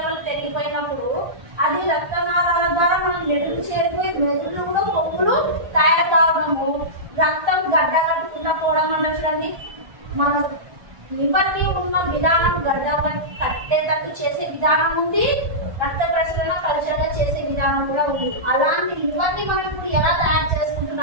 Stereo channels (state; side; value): late; left; 1.3 ms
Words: పెరిగిపోయినప్పుడు అది రక్తనాళాల ద్వారా మనం మెదడు చేరిపోయి మెదడులో కూడా కొవ్వులు తయారు కావడము, రక్తం గడ్డ కట్టుకుండా పోవడం అంటే చూడండి. మన లివర్ ని ఉన్న విధానం గడ్డ కట్టేటట్టు చేసే విధానం ఉంది, రక్త ప్రసరణ కల్చరగా చేసే విధానం కూడా ఉంది. అలాంటి లివర్ ని మనం ఇప్పుడు ఎలా తయారు